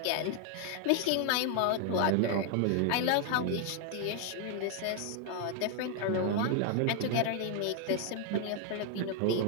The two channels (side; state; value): both; different; correlation 0.00